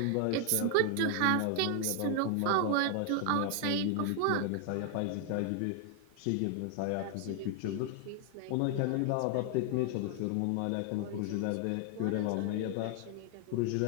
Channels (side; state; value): both; different; correlation 0.00